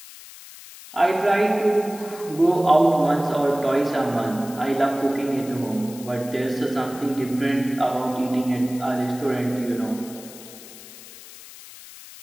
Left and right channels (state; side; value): noise; left; hiss, 17 dB below the sound